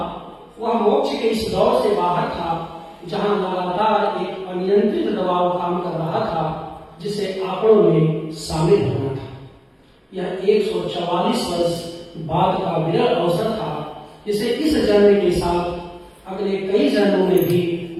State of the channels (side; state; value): both; identical; correlation 1.00